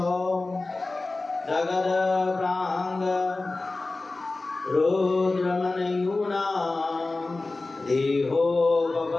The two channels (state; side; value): quieter; right; 3.3 dB